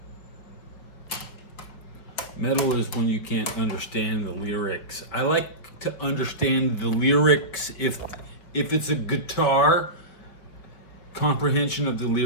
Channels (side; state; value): right; late; 5.2 ms